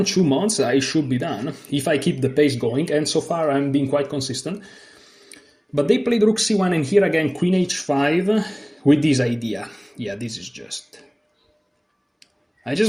months I should be done, if I keep the pace going, and so far I'm being quite consistent. But they played rook c1, and here again queen h5 with this idea. Yeah, this is just... I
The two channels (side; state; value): both; identical; correlation 1.00